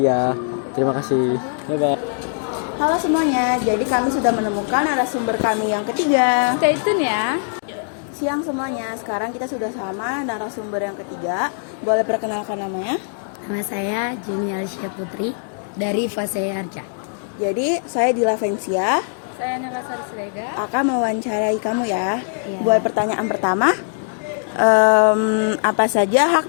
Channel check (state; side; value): silent; right; digital silence